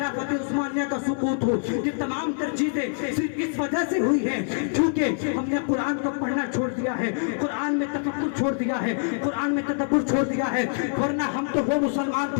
عثمانیہ کا سقوط ہو، یہ تمام تر چیزیں صرف اس وجہ سے ہوئی ہیں کیونکہ ہم نے قرآن کو پڑھنا چھوڑ دیا ہے، قرآن میں تفکر چھوڑ دیا ہے، قرآن میں تدبر چھوڑ دیا ہے. ورنہ ہم تو وہ مسلمان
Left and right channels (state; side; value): silent; right; 62 dB below the other